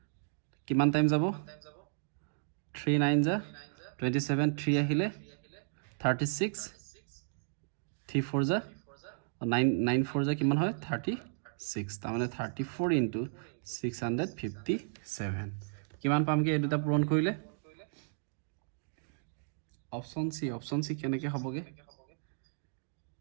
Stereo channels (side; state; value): left; silent; digital silence